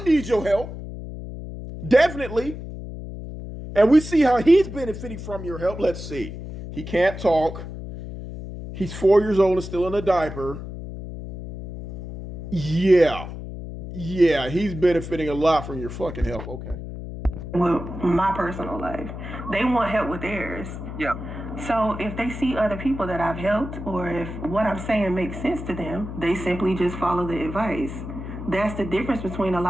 needs your help. Definitely. And we see how he's benefiting from your help. Let's see. He can't talk. He's 4 years old and still in a diaper. Yeah, he's benefiting a lot from your fucking help. Okay. With my personal life, they want help with theirs. Yeah. So if they see other people that I've helped, or if what I'm saying makes sense to them, they simply just follow the advice. That's the difference between a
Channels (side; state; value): left; noise; hum, 9 dB below the sound